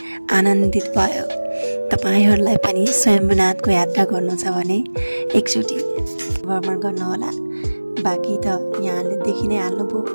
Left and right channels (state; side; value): inverted; both; correlation -1.00